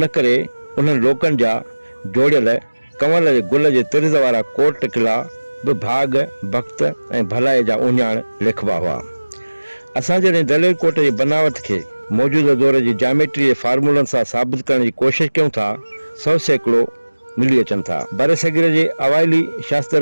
करे उन्हनि लोकनि जा जोड़ियल कंवर जे गुल जे तिर्ज़ वारा कोट किला बि भाग भक्त ऐं भलाई जा उञाण लिखबा हुआ। असां जॾहिं दलेल कोट जी बनावट खे मौजूदा दौर जी जामेट्री जे फार्मूलनि सां साबित करण जी कोशिशि कयूं था, 100 सैकड़ो मिली अचनि था। बर सग़ीर जे अवाइली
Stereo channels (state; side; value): inverted; both; correlation -1.00